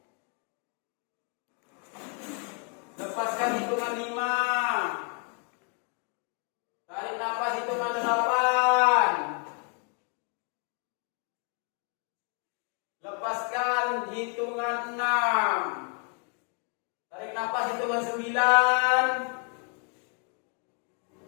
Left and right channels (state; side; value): quieter; right; 35.3 dB